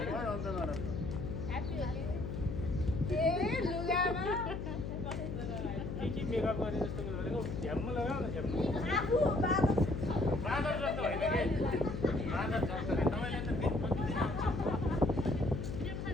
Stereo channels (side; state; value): left; noise; hum, 5 dB below the sound